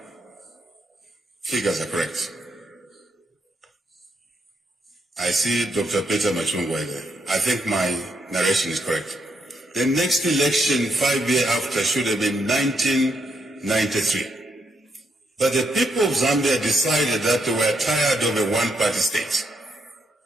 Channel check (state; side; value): normal; both; correlation 0.77